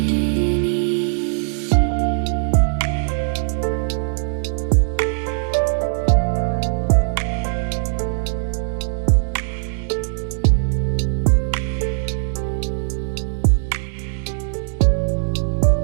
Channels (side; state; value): left; silent; digital silence